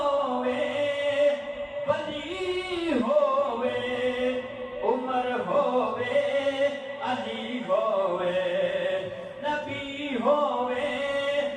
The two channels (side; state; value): both; identical; correlation 1.00